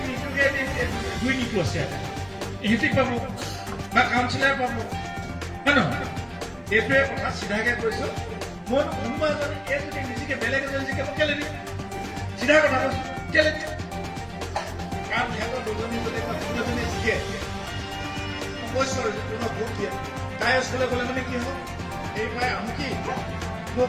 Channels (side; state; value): both; identical; correlation 1.00